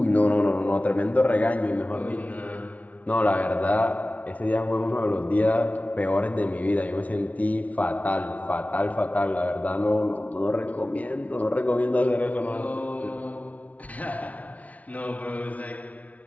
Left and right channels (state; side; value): late; right; 0.070 ms